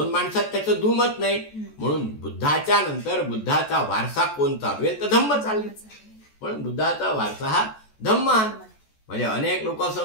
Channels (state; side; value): late; right; 14 ms